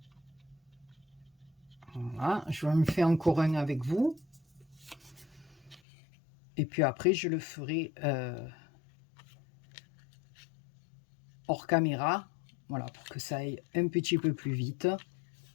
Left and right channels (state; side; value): drops out; right; at 5.8 s